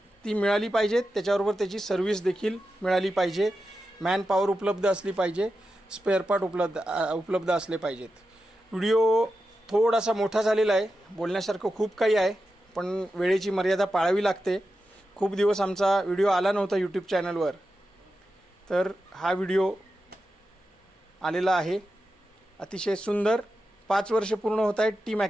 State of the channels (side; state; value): both; normal; correlation 0.90